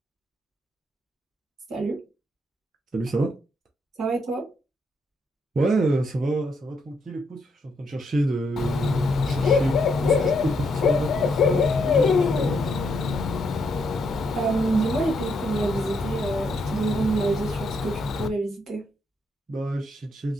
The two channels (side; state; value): both; normal; correlation 0.76